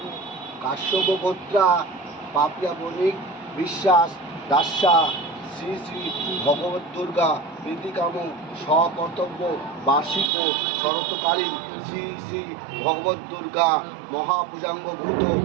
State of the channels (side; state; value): left; drops out; at 10.3 s